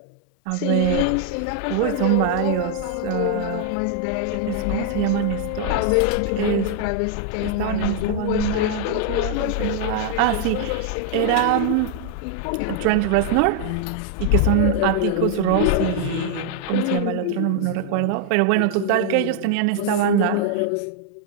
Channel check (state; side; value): different; both; correlation 0.00